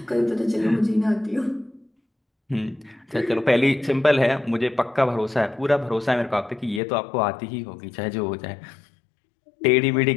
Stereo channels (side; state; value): right; drops out; at 6.8 s